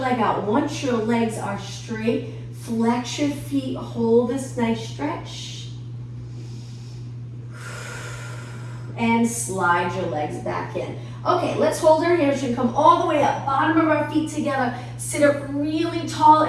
out. Once your legs are straight, flex your feet. Hold this nice stretch. And slide your legs back in. Okay, let's hold our hamstring. Come all the way up. Bottom of our feet together. Sit up really tall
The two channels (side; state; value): both; identical; correlation 1.00